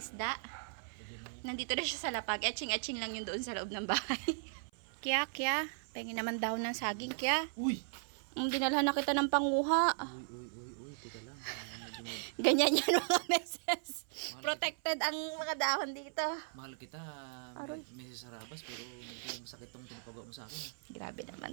isda. Nandito na siya sa lapag. Etching-etching lang yun doon sa loob ng bahay. Kya. Pengin naman daw ng saging, Kya. Uy! Dinalhan na kita ng panguha. Uy, teka lang. Ganyan yan mga meses. Protected ang mga dahon dito. Mahal kita, Aroy. Mrs. Sarabas, pero medyo sakit tong pinapagawa mo sa akin. Grabe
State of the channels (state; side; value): silent; left; 53 dB below the other